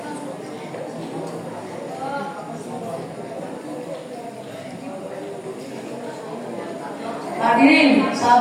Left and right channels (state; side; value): identical; both; correlation 1.00